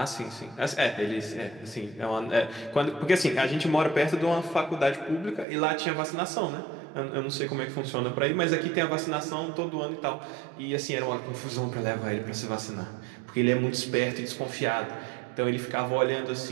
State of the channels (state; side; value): drops out; left; at 5.5 s